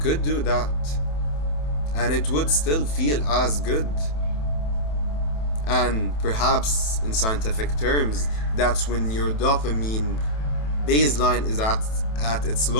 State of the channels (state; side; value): late; right; 27 ms